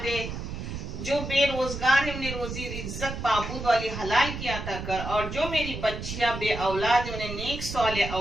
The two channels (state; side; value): noise; right; rumble, 7 dB below the sound